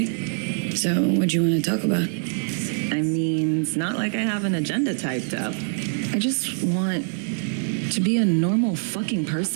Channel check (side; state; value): left; silent; digital silence